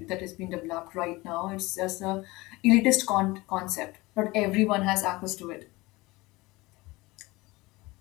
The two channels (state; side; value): quieter; right; 21.7 dB